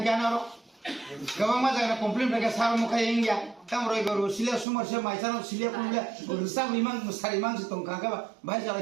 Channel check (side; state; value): left; drops out; at 4.7 s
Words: ro. Gawang ma jaga complain phaga sar mo khai ingya. Tam roibar bo silia sumber se maisano silia kumbia. Risam liman musariman se tong hangkai ba. Bhai